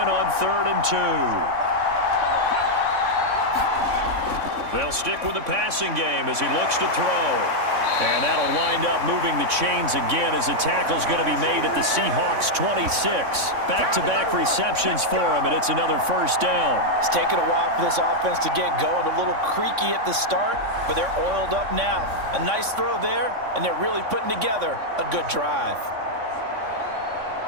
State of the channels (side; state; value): left; late; 3.6 ms